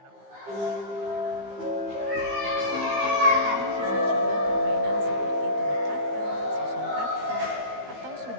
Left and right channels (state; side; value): late; left; 15 ms